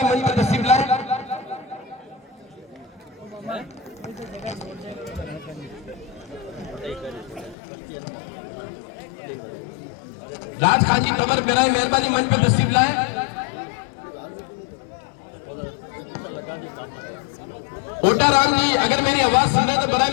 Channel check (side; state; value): right; drops out; at 7.6 s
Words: मंच पर तशरीफ लाएं। राज खान जी तंवर बराए मेहरबानी मंच पर तशरीफ लाएं। ओटा राम जी अगर मेरी आवाज सुन रहे हैं तो बराए